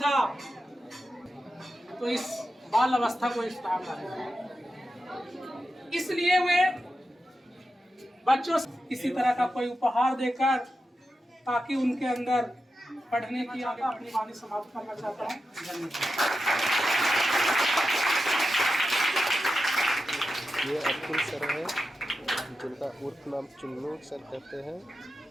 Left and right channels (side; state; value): both; normal; correlation 0.90